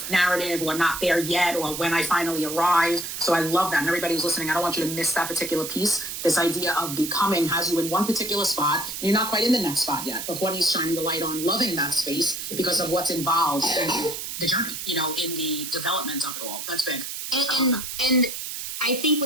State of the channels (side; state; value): right; noise; hiss, 6 dB below the sound